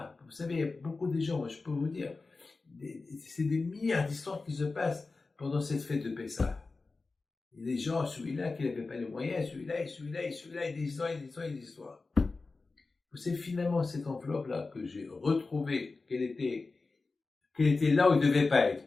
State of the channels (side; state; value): right; quieter; 3.8 dB